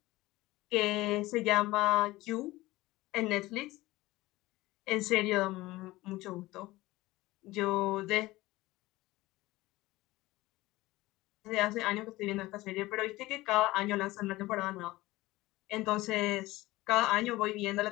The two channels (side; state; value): right; quieter; 18.8 dB